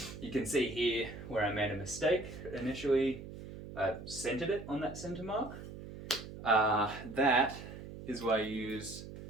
You can see here where I made a mistake. Initially centered it on that center mark. That is why I use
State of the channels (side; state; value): right; noise; hum, 12 dB below the sound